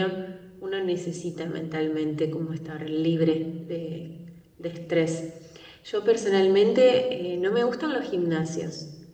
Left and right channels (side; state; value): both; identical; correlation 1.00